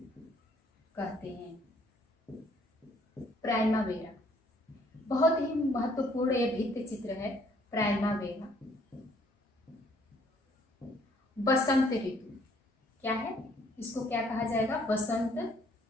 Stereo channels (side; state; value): both; normal; correlation 0.64